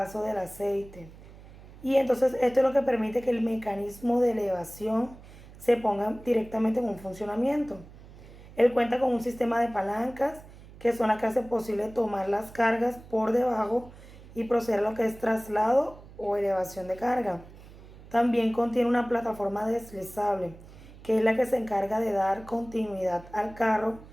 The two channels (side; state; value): right; noise; hum, 19 dB below the sound